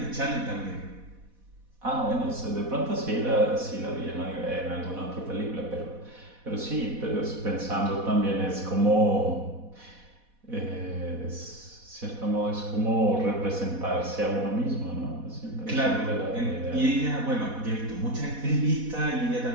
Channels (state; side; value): late; left; 4.1 ms